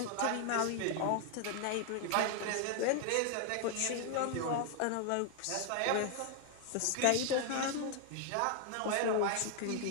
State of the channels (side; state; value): both; different; correlation 0.00